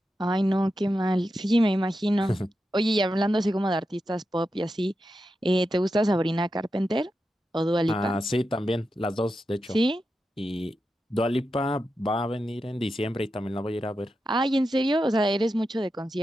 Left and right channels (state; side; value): normal; both; correlation 0.89